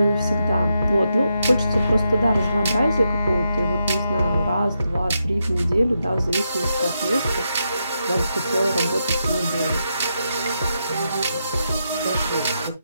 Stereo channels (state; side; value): inverted; both; correlation -0.84